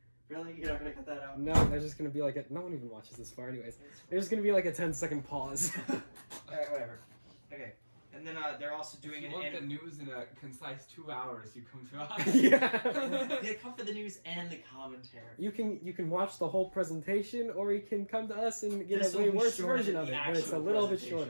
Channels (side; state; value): both; inverted; correlation -1.00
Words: Really? You're not gonna cut that out? No, there's just gonna be like a. No one even watches this far, anyways. There's gonna be like a 10-second pause. Alright, whatever. Okay. And then they're also doing If an you want the anim- news in a concise 2 hours, you come to us. Yeah. They come for the news and the commentary. You can watch the whole presentation, or you can come to us and get This a will way be worse shorter version than of the it, but it's a actual little bit presentation.